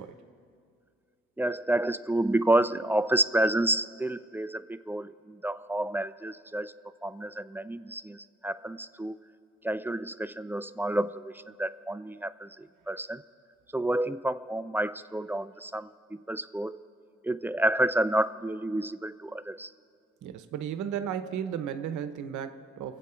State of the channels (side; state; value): both; normal; correlation 0.69